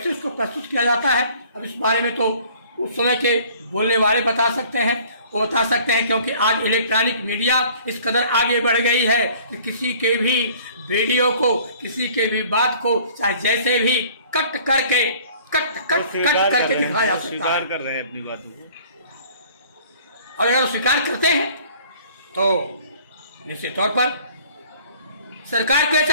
उसको प्रस्तुत किया जाता है, अब इस बारे में तो उस समय के बोलने वाले बता सकते हैं, वो बता सकते हैं। क्योंकि आज इलेक्ट्रॉनिक मीडिया इस कदर आगे बढ़ गई है कि किसी के भी वीडियो को, किसी के भी बात को चाहे जैसे भी कट करके दिखाया जा सकता स्वीकार है। कर रहे हैं अपनी बातों को। और अगर वो स्वीकार करते हैं तो निश्चित तौर पर सरकार को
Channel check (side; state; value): both; inverted; correlation -0.53